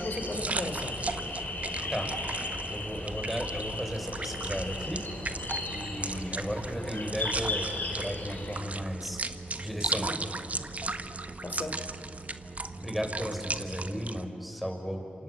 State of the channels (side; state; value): both; normal; correlation 0.51